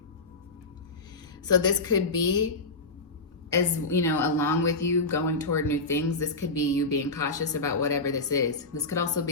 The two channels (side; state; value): right; quieter; 3.4 dB